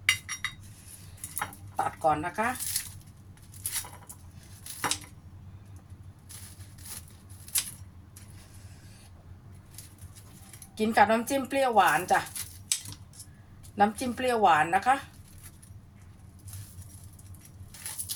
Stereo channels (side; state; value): both; identical; correlation 1.00